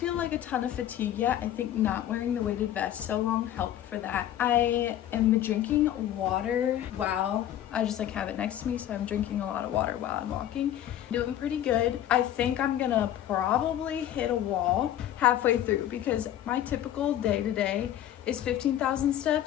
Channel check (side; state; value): right; quieter; 11.7 dB